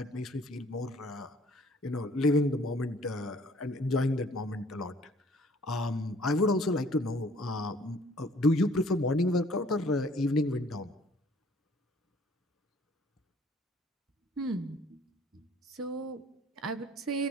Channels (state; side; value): normal; both; correlation 0.57